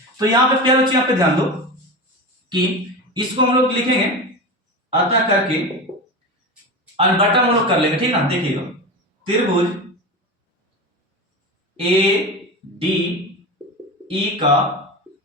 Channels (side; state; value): both; normal; correlation 0.25